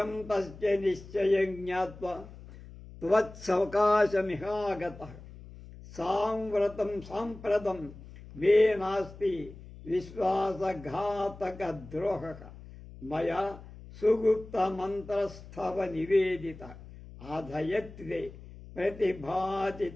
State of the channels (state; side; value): noise; left; hum, 17 dB below the sound